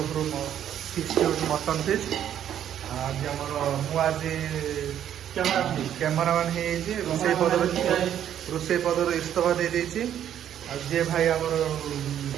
ଫିଷ୍ଟ ହେଉଛି ମଟନ୍ ଫିଷ୍ଟ। ଆଜି ଆମର ମୁଁ ଆଜି କ୍ୟାମେରାମ୍ୟାନ୍ ହେଇଯାଇଛି। ରୋଷେଇ ପଦରୁ ଇସ୍ତଫା ଦେଇଦେଇଛି। ଆଉ ଯିଏ ଭାଇ ଆମର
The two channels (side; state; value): left; quieter; 10.2 dB